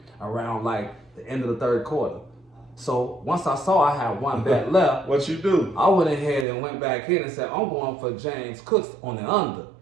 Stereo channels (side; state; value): left; drops out; at 6.5 s